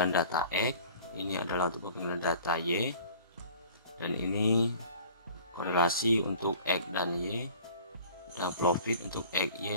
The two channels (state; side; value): inverted; both; correlation -0.46